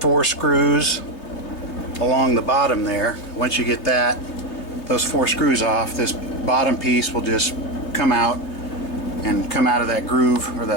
screws along the bottom there. Once you get those 4 screws off, this bottom piece will just come out and come out of that groove or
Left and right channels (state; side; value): late; right; 3.2 ms